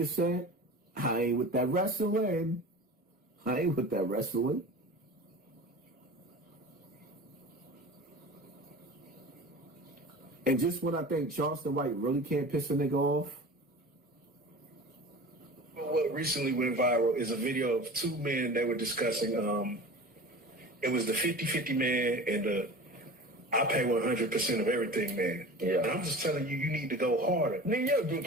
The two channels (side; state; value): both; normal; correlation 0.36